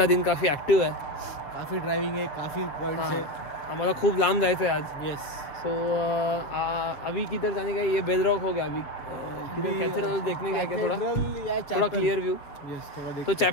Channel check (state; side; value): late; right; 7.3 ms